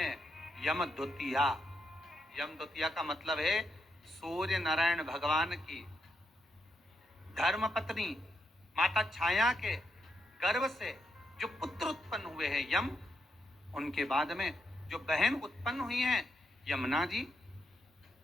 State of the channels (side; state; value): both; normal; correlation 0.81